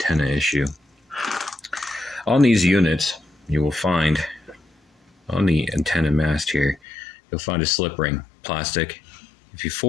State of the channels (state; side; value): drops out; right; at 6.8 s